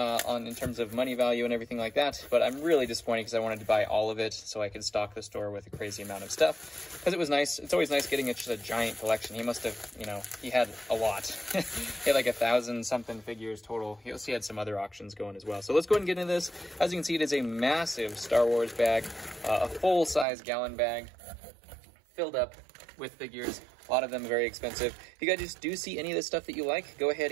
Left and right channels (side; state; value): left; drops out; at 20.2 s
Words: terms of money value and everything like that, but I'm really disappointed because I wanted to buy all of it so I could stock the store with a crazy amount of stuff, because it was nice. It's always nice getting just a giant collection. He must have, you know, he had a lot. He had like 1,000-something figures total. He also had some other auctions going as well. So let's go ahead and get into this. As you can see, it is a massive Star Wars bag, a full-size gallon bag filled up with figures. A lot of them very expensive. If you guys do see any of this stuff that you like, go ahead